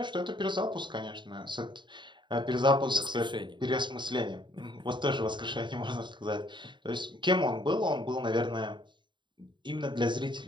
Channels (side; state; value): left; late; 0.23 ms